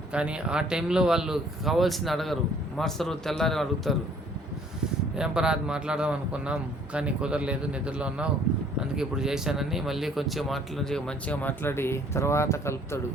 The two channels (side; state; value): both; normal; correlation 0.58